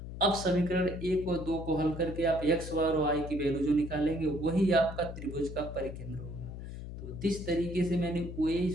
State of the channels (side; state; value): left; noise; hum, 9 dB below the sound